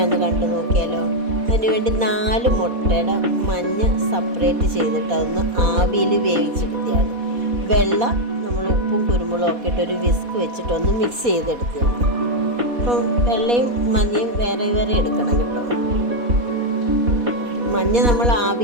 കണ്ടു നോക്കിയാലോ. അതിനുവേണ്ടി 4 മുട്ടയുടെ മഞ്ഞ സെപ്പറേറ്റ് ചെയ്തിട്ട് അതൊന്ന് ആവിയിൽ വേവിച്ചെടുത്തിയാണ്. വെള്ള നമ്മൾ ഉപ്പും കുരുമുളകും ഒക്കെ ഇട്ട് ഒരു വിസ്ക് വെച്ചിട്ടൊന്ന് മിക്സ് ചെയ്തെടുത്തിയാണ്. അപ്പം വെള്ളയും മഞ്ഞയും വേറെ വേറെ എടുക്കണം കേട്ടോ. മഞ്ഞ നമ്മൾ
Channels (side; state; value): left; late; 4.2 ms